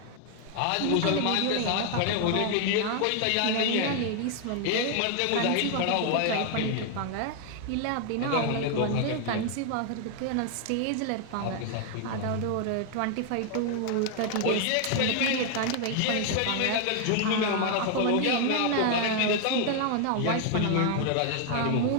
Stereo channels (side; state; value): both; different; correlation 0.00